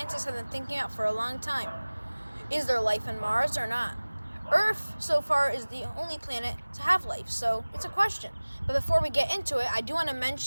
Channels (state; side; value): inverted; both; correlation -1.00